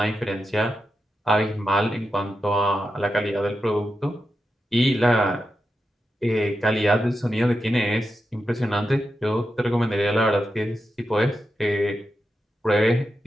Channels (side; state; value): both; normal; correlation 0.88